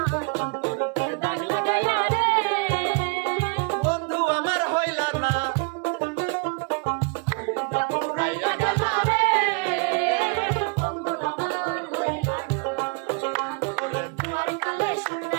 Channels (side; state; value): left; quieter; 34.1 dB